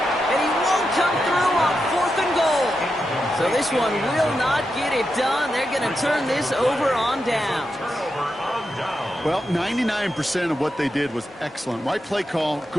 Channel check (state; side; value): normal; both; correlation 0.87